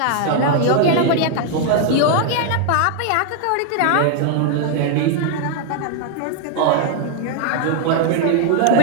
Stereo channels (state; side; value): different; both; correlation 0.00